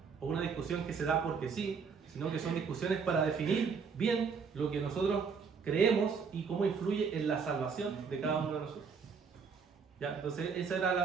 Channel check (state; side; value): quieter; left; 5.7 dB